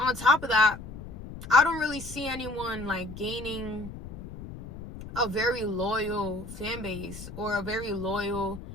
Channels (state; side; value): noise; left; rumble, 12 dB below the sound